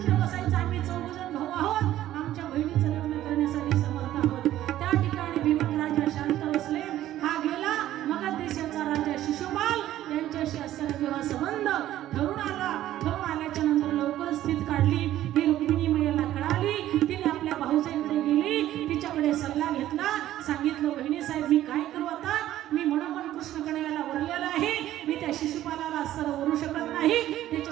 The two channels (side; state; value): left; quieter; 13.3 dB